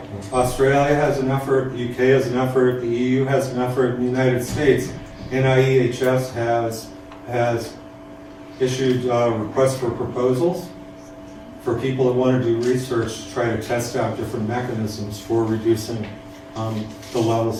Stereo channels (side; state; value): both; identical; correlation 1.00